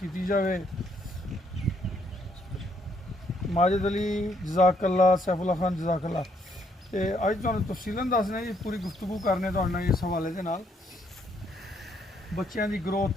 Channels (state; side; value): normal; both; correlation 0.71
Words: जाए। माजिद अली जज़ाकल्ला, सैफुल्ला खान जज़ाकल्ला। तो अज तुहानूं तफसीलन दसने जी, पूरी गुफ्तगू करने तुहाडे नाल इस हवाले दे नाल। बच्चों की ग्रोथ